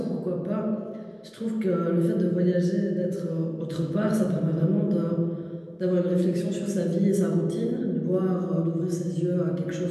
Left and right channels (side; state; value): both; identical; correlation 1.00